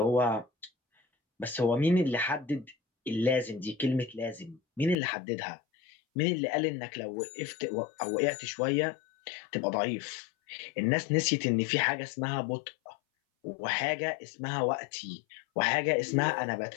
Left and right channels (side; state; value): right; drops out; at 5.0 s